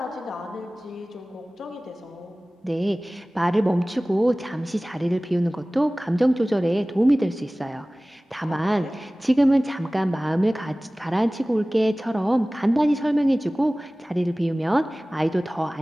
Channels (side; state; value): both; normal; correlation 0.98